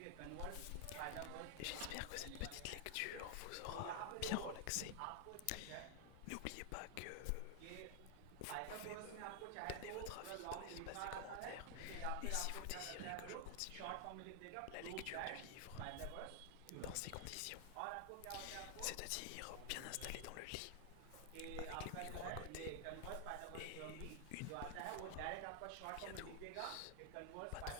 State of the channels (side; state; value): both; different; correlation 0.00